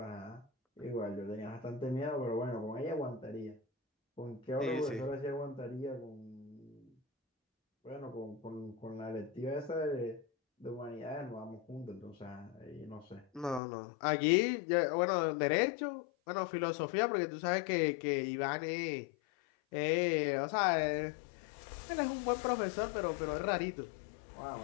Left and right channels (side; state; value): right; drops out; at 13.6 s